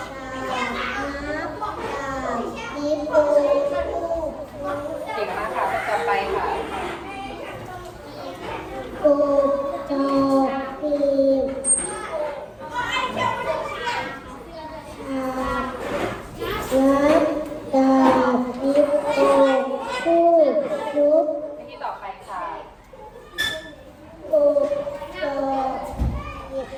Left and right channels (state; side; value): identical; both; correlation 1.00